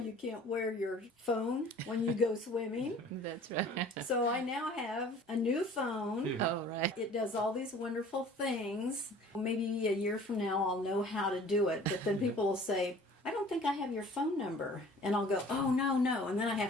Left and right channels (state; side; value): normal; both; correlation 0.48